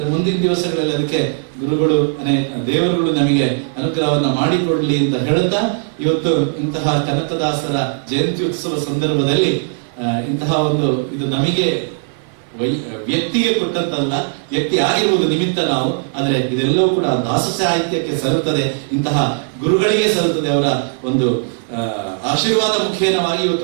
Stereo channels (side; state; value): left; silent; 56 dB below the other